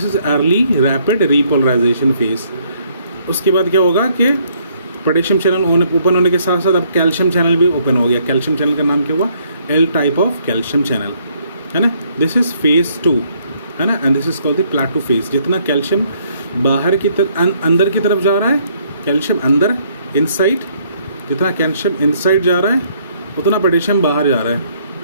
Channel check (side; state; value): both; inverted; correlation -0.67